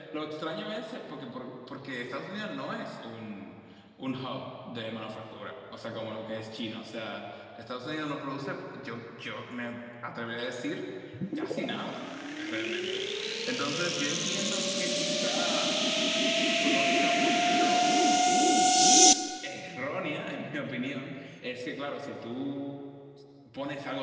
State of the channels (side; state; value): both; identical; correlation 1.00